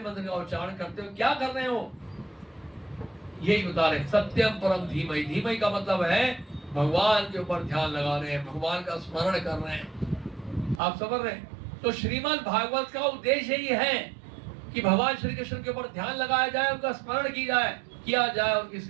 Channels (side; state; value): left; drops out; at 10.8 s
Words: का उच्चारण करते हो क्या कर रहे हो? यही बता रहे सत्यम परम धीमहि। धीमहि का मतलब है भगवान के ऊपर ध्यान लगा रहे हैं, भगवान का स्मरण कर रहे हैं। आप समझ रहे हैं? तो श्रीमद् भागवत का उद्देश्य ही है कि भगवान श्री कृष्ण के ऊपर ध्यान लगाया जाए, उनका स्मरण किया जाए, उनकी